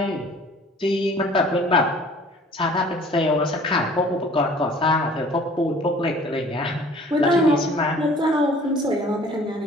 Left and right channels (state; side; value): normal; both; correlation 0.50